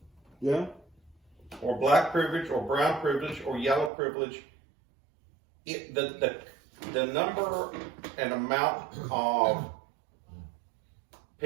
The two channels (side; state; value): left; drops out; at 3.9 s